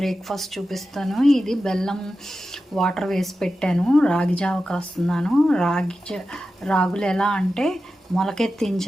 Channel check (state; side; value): normal; both; correlation 0.92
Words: చూపిస్తాను. ఇది బెల్లం వాటర్ వేసి పెట్టాను. రాగి జావ కాస్తున్నాను. రాగులు ఎలా అంటే